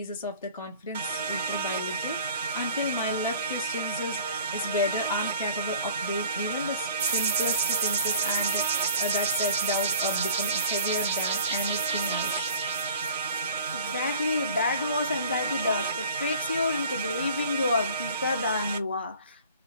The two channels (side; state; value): both; inverted; correlation -0.48